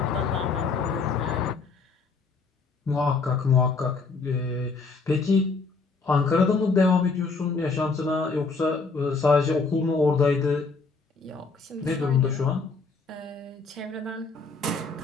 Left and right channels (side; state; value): right; quieter; 4.3 dB